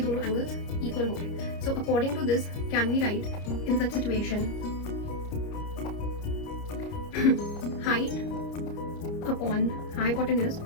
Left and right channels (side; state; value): right; late; 29 ms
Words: एंगल्स इक्वल होंगे. So according to this can we write in such situation height upon hypotenuse